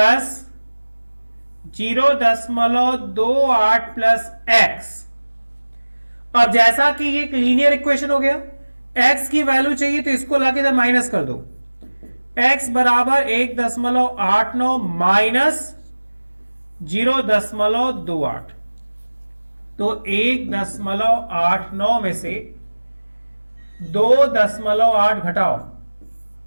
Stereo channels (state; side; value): inverted; both; correlation -1.00